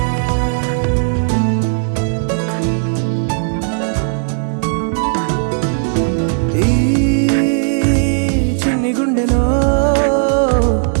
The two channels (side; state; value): left; silent; digital silence